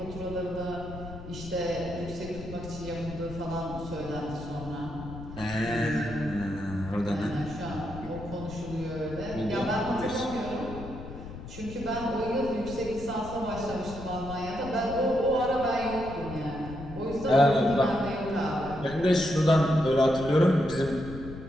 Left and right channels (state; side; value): noise; left; rumble, 12 dB below the sound